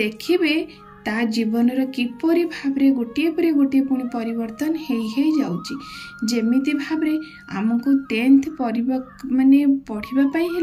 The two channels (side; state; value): both; identical; correlation 1.00